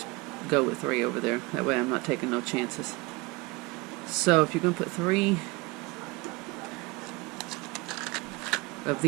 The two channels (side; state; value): left; quieter; 24.4 dB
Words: go with 3 over there. That way I'm not taking no chances. So if you're going to put 3 of